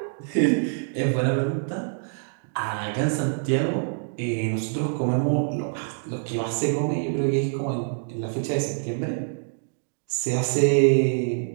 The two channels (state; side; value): silent; left; digital silence